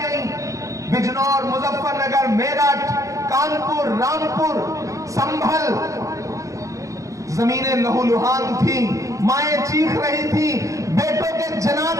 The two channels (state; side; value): late; left; 0.16 ms